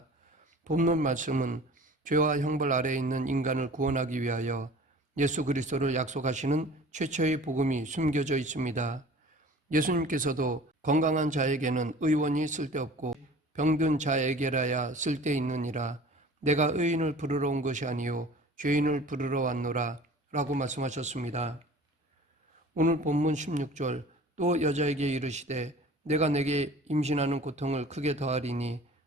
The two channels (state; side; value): normal; both; correlation 0.44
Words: 본문 말씀은 죄와 형벌 아래에 있는 인간을 구원하기 위하여 예수 그리스도를 약속하시는 최초의 복음이 숨겨져 있습니다. 예수님께서도 건강한 자에게는 의원이 쓸데없고 병든 자에게라야 쓸데있느니라 내가 의인을 부르러 온 것이 아니요 죄인을 부르러 왔노라 라고 말씀하셨습니다. 오늘 본문 16절 또 여자에게 이르시되 내가 내게 임신하는 고통을 크게 더하리니